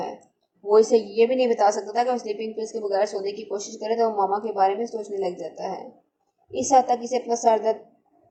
وہ اسے یہ بھی نہیں بتا سکتا تھا کہ وہ سلیپنگ پلز کے بغیر سونے کی کوشش کرے تو وہ ماما کے بارے میں سوچنے لگ جاتا ہے۔ اس حد تک اسے اپنا سر درد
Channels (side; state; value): both; identical; correlation 1.00